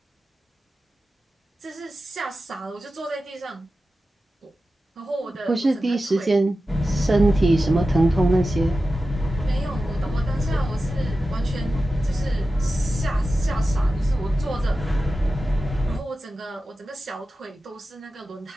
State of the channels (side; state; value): both; normal; correlation 0.93